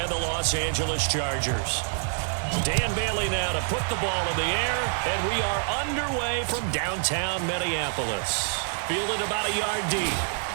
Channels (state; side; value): silent; left; digital silence